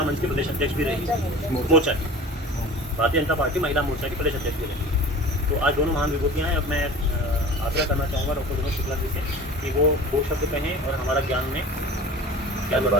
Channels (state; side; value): normal; both; correlation 0.39